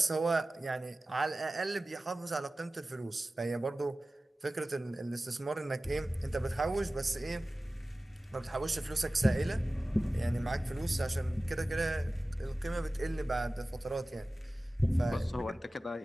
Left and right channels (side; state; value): both; normal; correlation 0.96